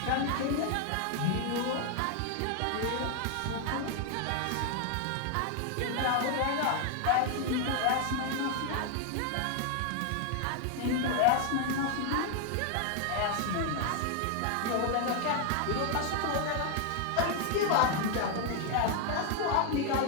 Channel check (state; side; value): different; both; correlation 0.00